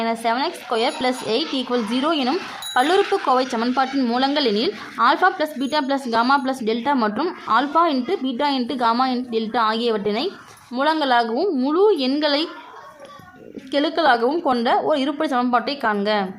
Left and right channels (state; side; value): identical; both; correlation 1.00